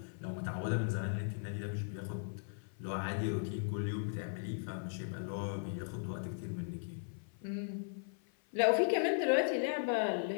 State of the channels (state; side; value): silent; right; 53 dB below the other